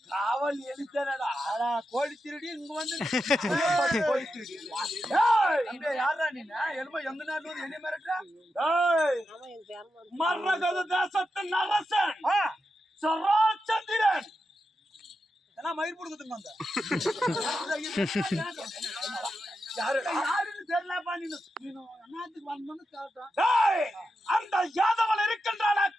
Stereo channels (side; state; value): both; normal; correlation 0.88